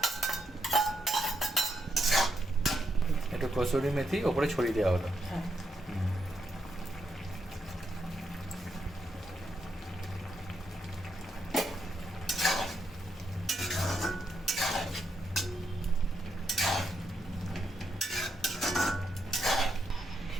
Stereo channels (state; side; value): normal; both; correlation 0.80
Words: একটু কসুরি মেথি ওপরে ছড়িয়ে দেওয়া হলো।